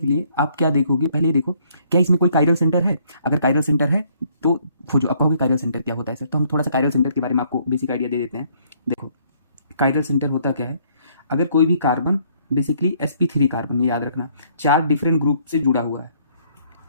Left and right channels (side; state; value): both; inverted; correlation -0.65